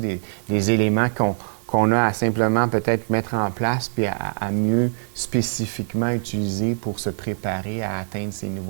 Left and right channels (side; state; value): left; silent; 62 dB below the other